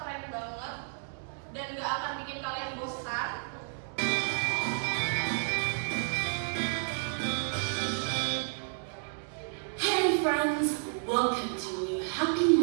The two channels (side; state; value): left; silent; digital silence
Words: banget dan gak akan bikin kalian bosan. Hey friends, welcome to a new Happy